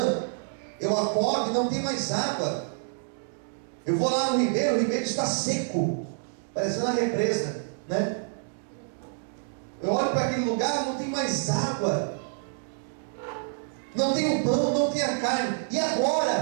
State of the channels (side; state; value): left; silent; digital silence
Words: eu acordo e não tem mais água. Eu vou lá no ribeiro, o ribeiro está seco, parecendo a represa, né? Eu olho para aquele lugar, não tem mais água, não tem o pão, não tem a carne. E